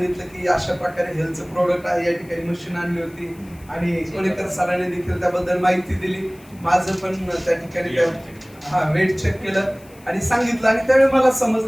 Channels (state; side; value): noise; left; hiss, 26 dB below the sound